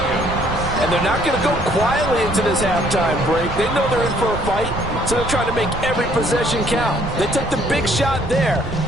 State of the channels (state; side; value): noise; right; rumble, 10 dB below the sound